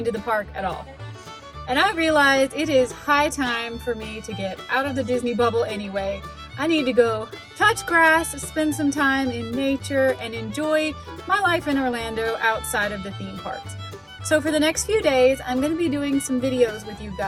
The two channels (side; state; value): both; identical; correlation 1.00